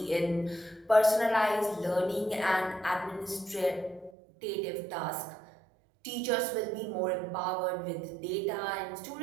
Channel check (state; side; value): drops out; left; at 4.1 s